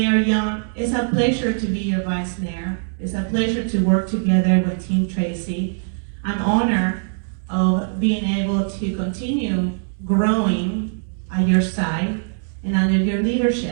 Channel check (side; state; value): left; silent; digital silence